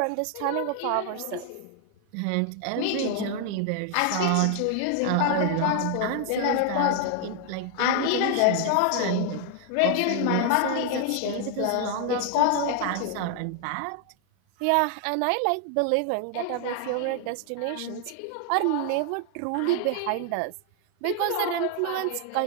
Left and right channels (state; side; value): different; both; correlation 0.00